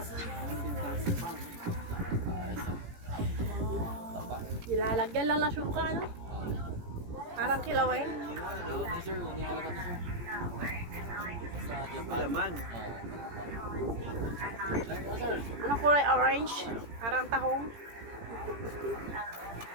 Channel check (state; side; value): late; left; 17 ms